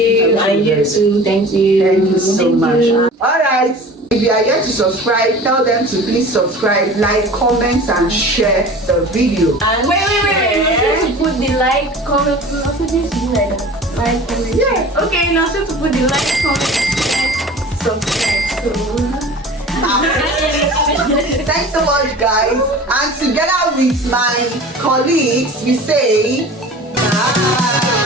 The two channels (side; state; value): both; normal; correlation 0.40